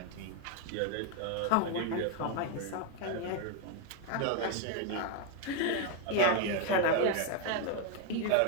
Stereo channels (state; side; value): different; both; correlation 0.02